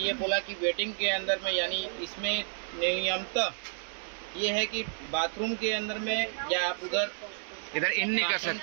बोला कि वेटिंग के अंदर में यानी इसमें नियमतः ये है कि बाथरूम के अंदर में या आप इधर इन नहीं कर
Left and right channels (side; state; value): left; silent; digital silence